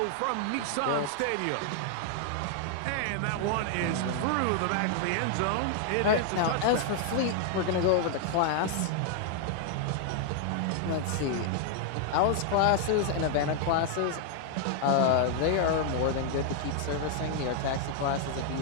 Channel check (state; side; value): different; both; correlation 0.00